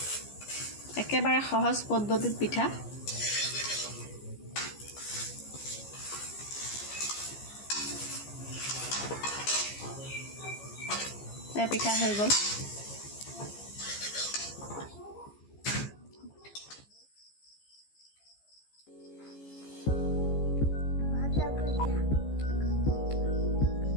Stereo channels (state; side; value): late; right; 15 ms